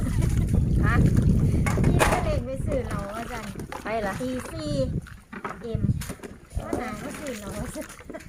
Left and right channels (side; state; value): both; identical; correlation 1.00